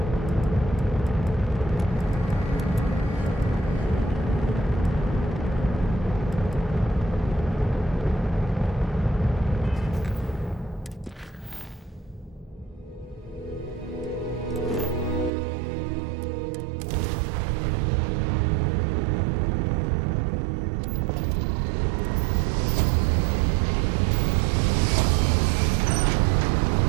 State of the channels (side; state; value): left; drops out; at 15.3 s